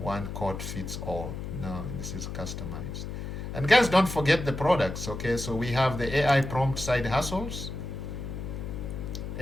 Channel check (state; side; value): noise; left; hum, 6 dB below the sound